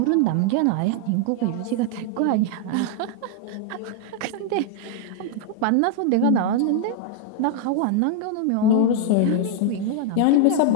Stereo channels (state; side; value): different; both; correlation 0.00